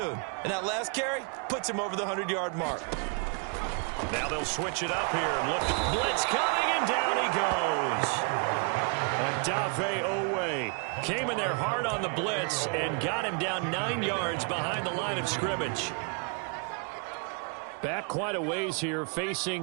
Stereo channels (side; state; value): left; quieter; 37.3 dB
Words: And that last carry puts him over the 100-yard mark. Now they'll switch it up here and look. Blitz coming, and down he goes. Adave Owe came in there hard on the blitz and got him down 9 yards behind the line of scrimmage. Back quite a ways here,